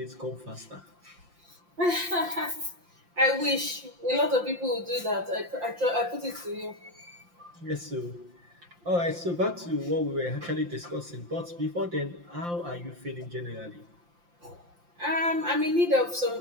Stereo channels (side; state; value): left; late; 5.8 ms